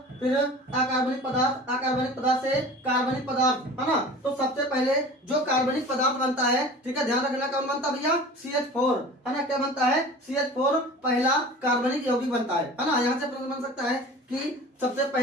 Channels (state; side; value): normal; both; correlation 0.40